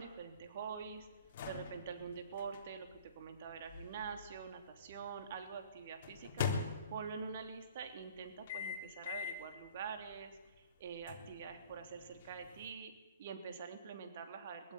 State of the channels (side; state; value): both; inverted; correlation -0.48